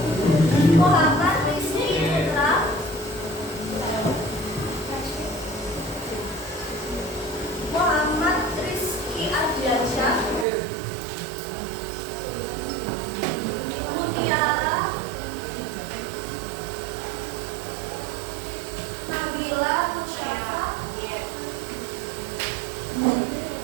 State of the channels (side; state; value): left; drops out; at 10.5 s